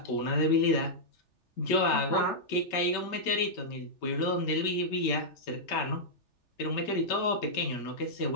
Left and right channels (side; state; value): right; late; 3.4 ms